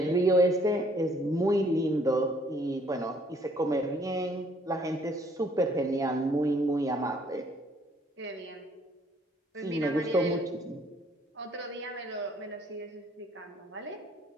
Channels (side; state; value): both; normal; correlation 0.63